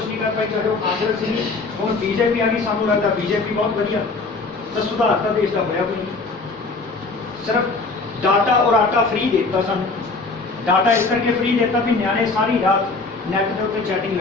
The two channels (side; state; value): right; quieter; 3.8 dB